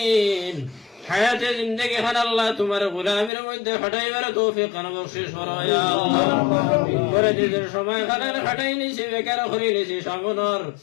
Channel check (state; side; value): drops out; right; at 3.3 s